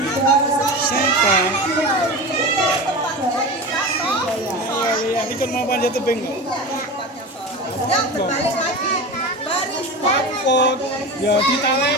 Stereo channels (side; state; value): both; normal; correlation 0.28